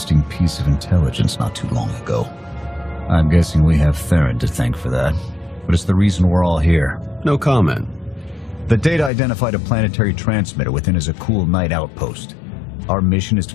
piece of intelligence not too long ago. I'm guessing we have Theron to thank for that, but it's the reason we're all here. No comment. The data identified a planetary transmitter within a Zakul night outpost. Our mission is to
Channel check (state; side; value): drops out; right; at 9.1 s